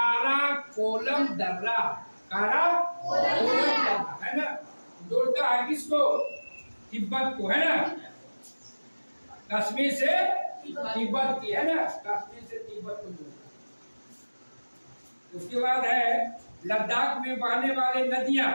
दर्रा, है ना, जोड़ता है किसको? तिब्बत को, है ना, कश्मीर से तिब्बत की, है ना, कश्मीर से तिब्बत को जोड़ता। उसके बाद है लद्दाख में बहने वाले नदियां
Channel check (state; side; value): inverted; both; correlation -1.00